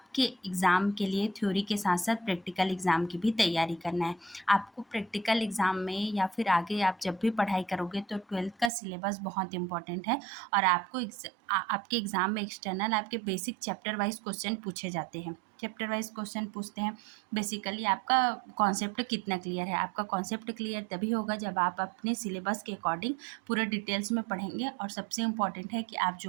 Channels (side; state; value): left; drops out; at 8.7 s